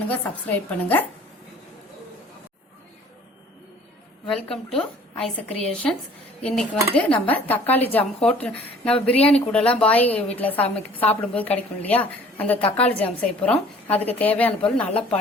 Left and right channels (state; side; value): normal; both; correlation 0.52